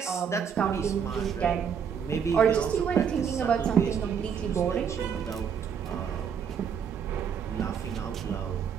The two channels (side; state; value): left; quieter; 7.3 dB